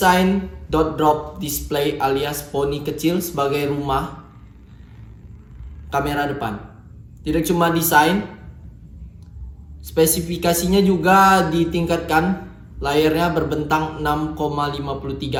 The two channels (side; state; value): both; identical; correlation 1.00